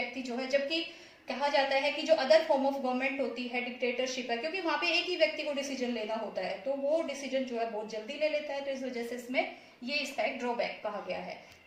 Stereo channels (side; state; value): both; identical; correlation 1.00